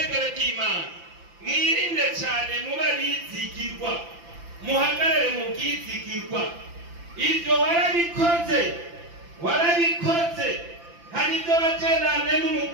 ry'Imana mwirinde cyane muba bizigirwa muhagarare mu bwizigirwa ibyo warabikoze hari ibyo bagendane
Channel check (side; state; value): left; late; 5.9 ms